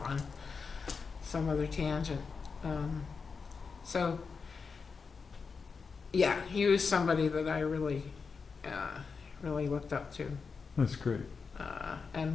on some other tangent. So yeah, he was somebody that I really looked up to. That's great.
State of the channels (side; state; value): right; quieter; 5.2 dB